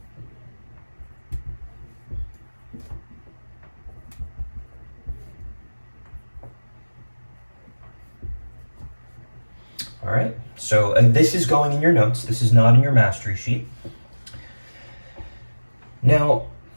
All right, so this is going in your notes. This is not in your mastery sheet. Now,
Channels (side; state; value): both; inverted; correlation -1.00